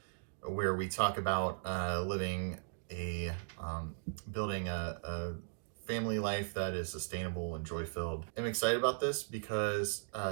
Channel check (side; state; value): left; silent; digital silence